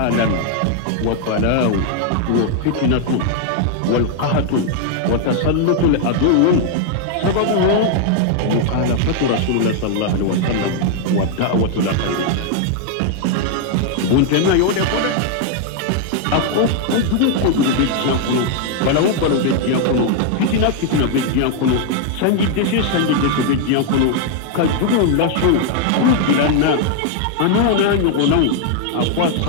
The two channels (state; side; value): different; both; correlation 0.00